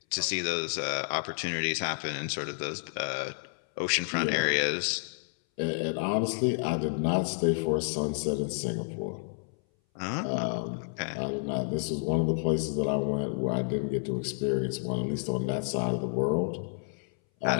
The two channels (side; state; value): right; silent; 58 dB below the other